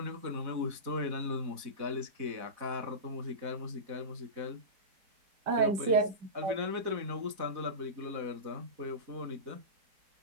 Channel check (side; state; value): left; late; 4.1 ms